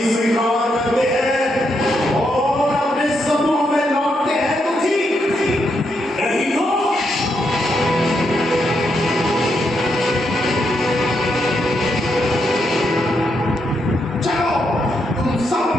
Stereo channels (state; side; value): normal; both; correlation 0.80